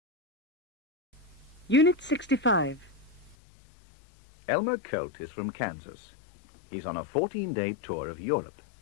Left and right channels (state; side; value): drops out; right; at 3.4 s